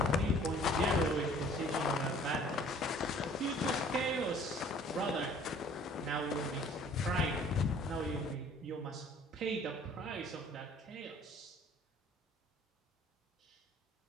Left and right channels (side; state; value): both; normal; correlation 0.53